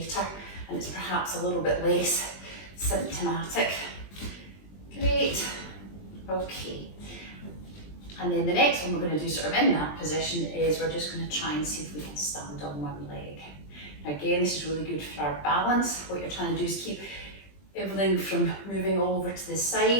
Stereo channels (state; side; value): late; right; 20 ms